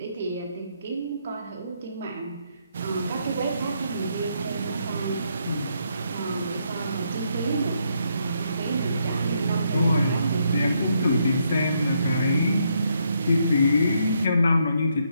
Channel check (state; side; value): inverted; both; correlation -0.76